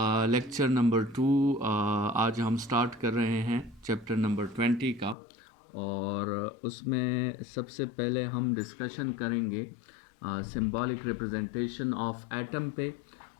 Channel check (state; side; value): drops out; right; at 5.2 s